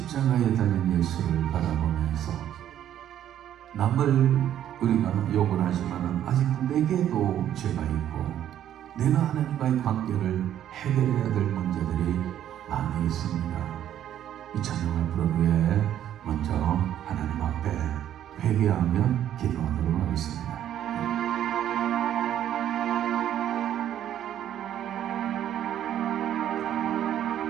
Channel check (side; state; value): left; quieter; 11.0 dB